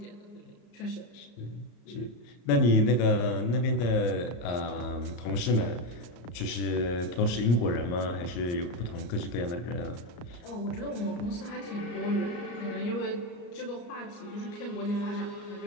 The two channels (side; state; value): right; late; 34 ms